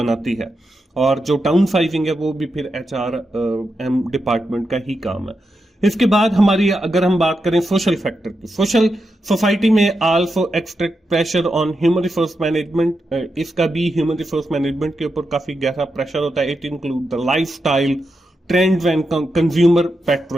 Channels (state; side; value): normal; both; correlation 0.87